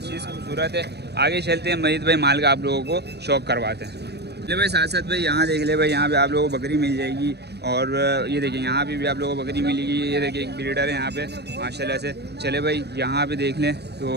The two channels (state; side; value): late; left; 0.48 ms